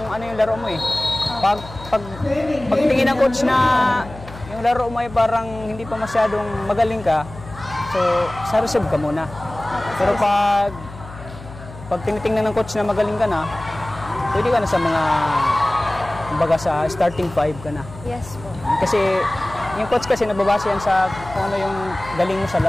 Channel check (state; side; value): noise; left; hum, 15 dB below the sound